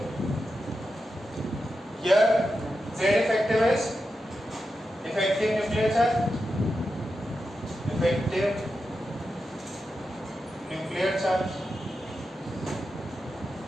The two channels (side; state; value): both; normal; correlation 0.89